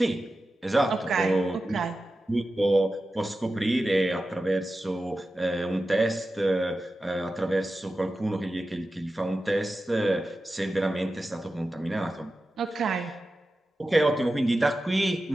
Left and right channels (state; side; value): normal; both; correlation 0.93